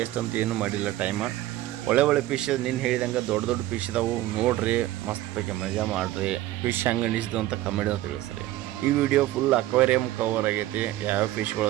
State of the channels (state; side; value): quieter; left; 15.3 dB